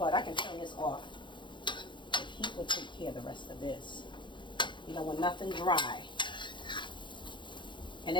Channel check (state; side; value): late; right; 0.23 ms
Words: I can turn this off. The heat will take care of the rest of this. You don't want nothing dry. And